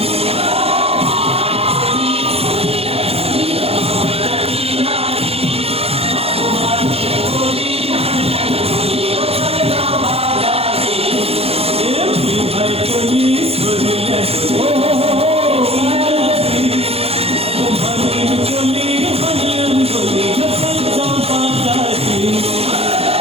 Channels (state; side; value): late; left; 0.29 ms